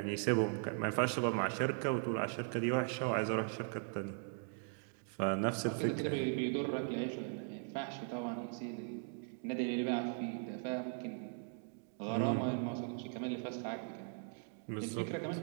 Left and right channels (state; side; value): silent; left; 52 dB below the other